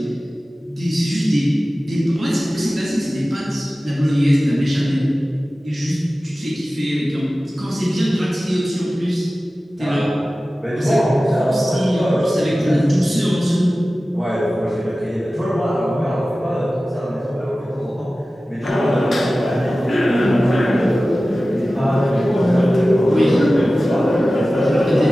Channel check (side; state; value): both; normal; correlation 0.96